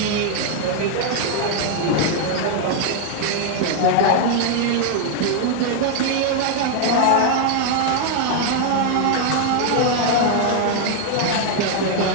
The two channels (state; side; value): different; both; correlation 0.00